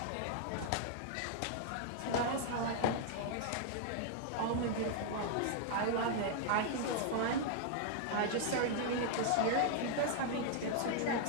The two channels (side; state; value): both; different; correlation -0.01